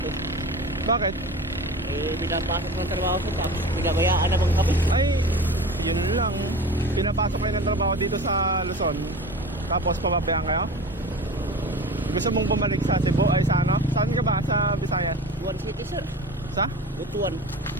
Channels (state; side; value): normal; both; correlation 0.35